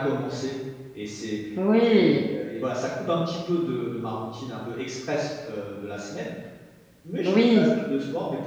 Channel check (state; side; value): identical; both; correlation 1.00